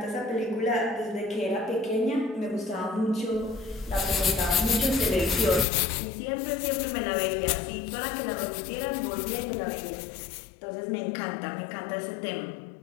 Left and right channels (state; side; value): drops out; right; at 5.7 s